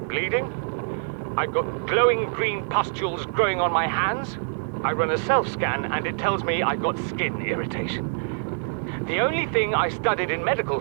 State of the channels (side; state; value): left; silent; digital silence